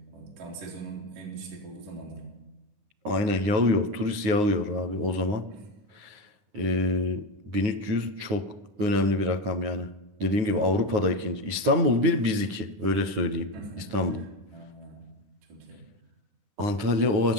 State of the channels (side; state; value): left; late; 9.5 ms